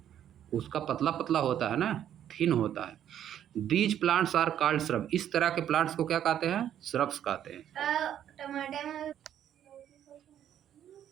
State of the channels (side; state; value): left; quieter; 10.4 dB